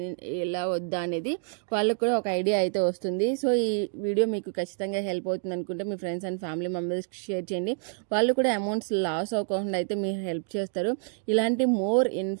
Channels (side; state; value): left; silent; 60 dB below the other